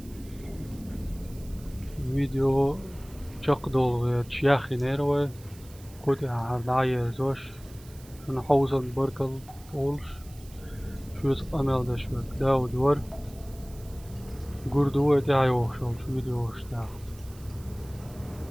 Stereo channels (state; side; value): noise; right; hiss, 22 dB below the sound